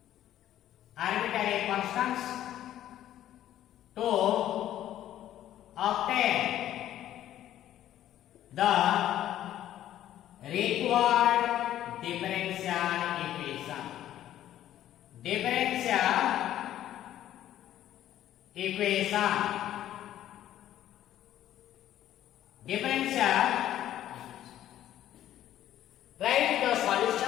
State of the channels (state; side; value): quieter; right; 12.3 dB